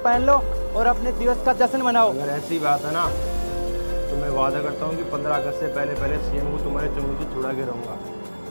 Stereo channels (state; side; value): inverted; both; correlation -1.00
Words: लो और अपने दिवस का जश्न मनाओ। अगर ऐसी बात है ना तो मैं वादा करता हूँ कि 15 अगस्त से पहले सीएम को तुम्हारे चंगुल से छुड़ा के रहूँगा,